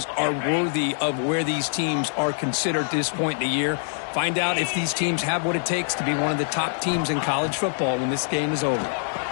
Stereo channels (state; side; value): silent; right; digital silence